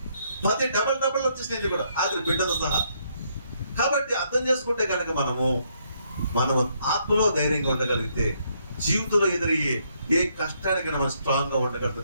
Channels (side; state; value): both; inverted; correlation -0.72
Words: 10 డబల్ వచ్చేసినాయి కూడా, ఆఖరి బిడ్డతో సహా. కాబట్టి అర్థం చేసుకుంటే కనుక మనం ఆత్మలో ధైర్యంగా ఉండగలిగితే జీవితంలో ఎదురయ్యే ఏ కష్టానికైనా మనం స్ట్రాంగ్ గా ఉండగలుగుతా